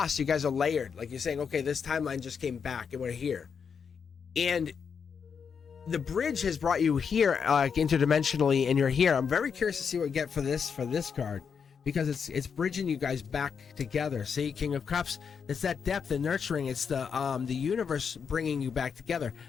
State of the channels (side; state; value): right; quieter; 6.5 dB